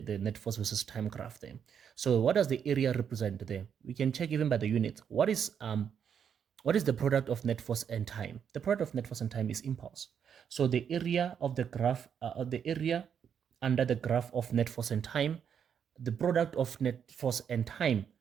net force versus time graph there. So what does the area represent there? We can check even by the units. What is the product of net force and time? The product of net force and time is impulse. So the area of the graph, the area under the graph of net force and time, the product of net force and time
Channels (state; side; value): quieter; left; 7.8 dB